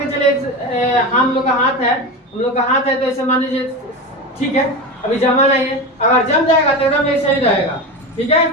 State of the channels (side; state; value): both; normal; correlation 0.22